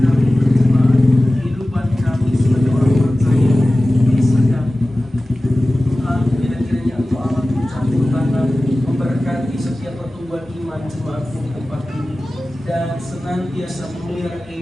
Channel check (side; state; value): both; normal; correlation 0.96